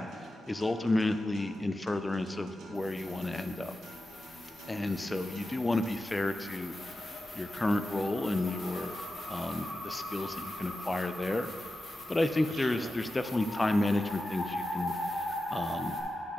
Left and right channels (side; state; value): both; normal; correlation 0.92